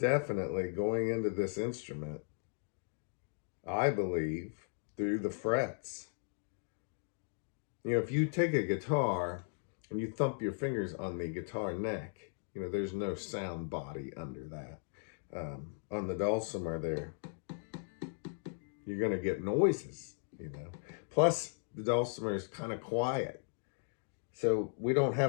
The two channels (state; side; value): silent; right; digital silence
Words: going into this instrument, I believe, through the frets. You know, if you take a guitar and you thump your fingers on the guitar neck, you know, there's no sound body under that. On the dulcimer there, you're going to get noises, you know. Plus, the dulcimer is kind of quiet. So we don't